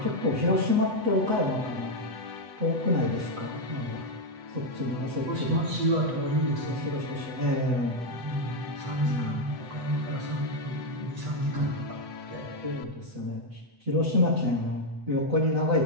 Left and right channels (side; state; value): left; late; 8.1 ms